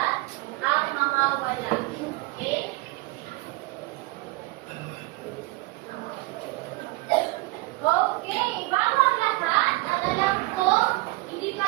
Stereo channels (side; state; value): left; quieter; 22.1 dB